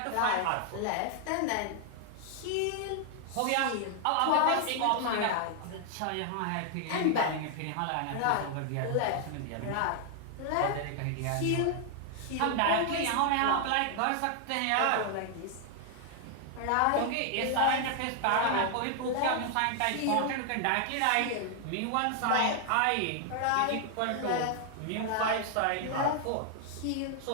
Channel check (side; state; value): both; different; correlation 0.00